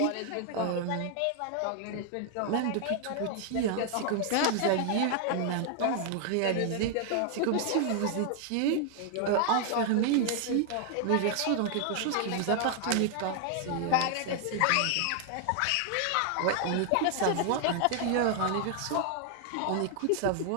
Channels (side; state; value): both; different; correlation 0.00